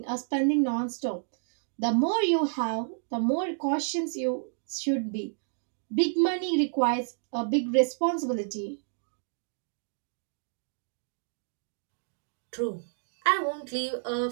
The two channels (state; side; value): silent; left; digital silence